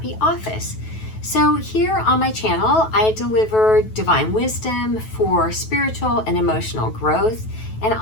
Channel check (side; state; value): right; late; 9.2 ms